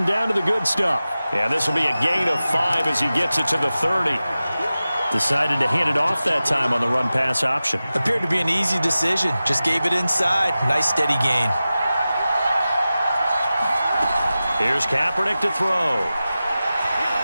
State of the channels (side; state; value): both; inverted; correlation -0.95